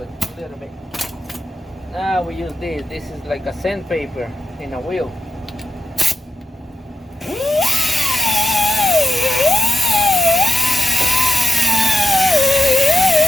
A little bit. Now we use this. This is like a sandpaper in a wheel.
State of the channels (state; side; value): normal; both; correlation 0.89